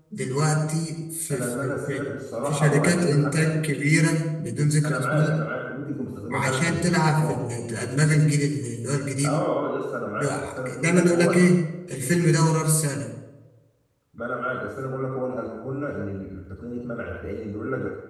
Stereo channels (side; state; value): both; identical; correlation 1.00